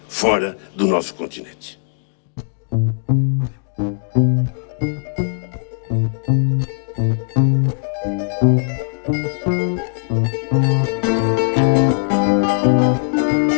fora do nosso continente.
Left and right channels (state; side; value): silent; right; digital silence